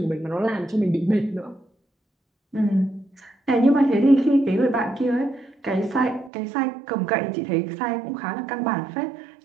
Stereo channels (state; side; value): drops out; left; at 6.3 s